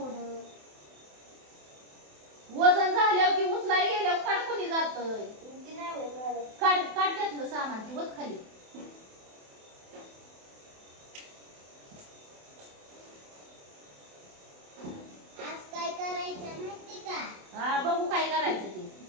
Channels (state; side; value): late; left; 27 ms